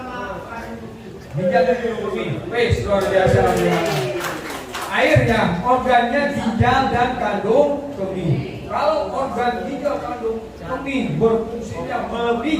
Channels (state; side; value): identical; both; correlation 1.00